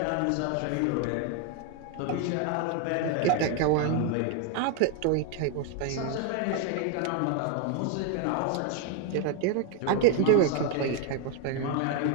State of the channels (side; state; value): both; different; correlation 0.01